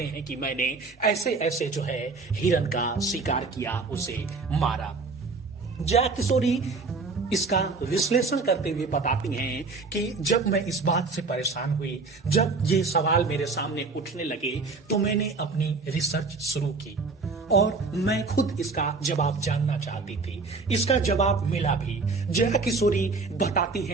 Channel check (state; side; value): quieter; left; 4.1 dB